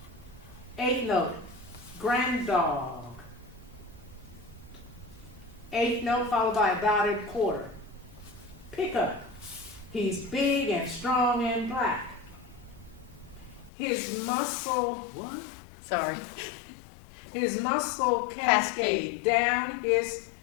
8th note, granddog. 8th note followed by a dotted quarter. Pickup. He's big and strong and black. His muscle, what? Sorry. His muscle cascade down his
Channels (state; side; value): drops out; right; at 13.7 s